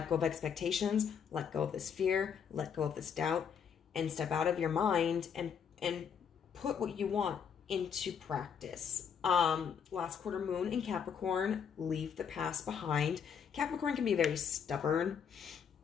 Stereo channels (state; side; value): quieter; right; 7.3 dB